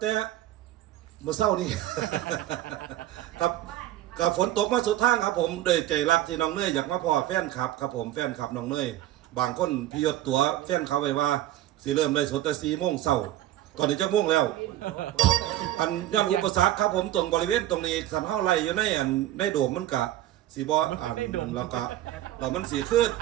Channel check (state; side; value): quieter; left; 13.8 dB